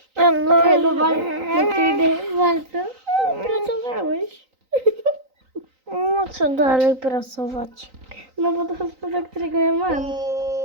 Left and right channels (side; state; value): left; late; 3.9 ms